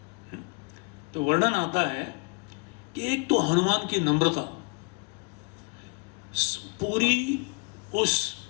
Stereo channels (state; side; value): quieter; right; 30.8 dB